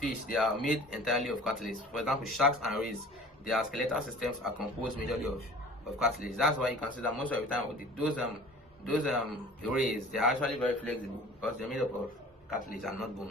they are made entirely of cartilage. For example, sharks and rays, their skeletal systems are composed majorly of cartilage. That's why you can see that most of the time those rays, they are actually very flexible because they're made up of cartilage and not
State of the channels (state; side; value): normal; both; correlation 0.44